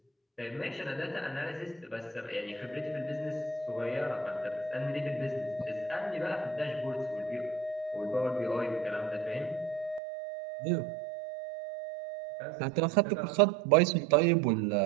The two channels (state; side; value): drops out; left; at 10.0 s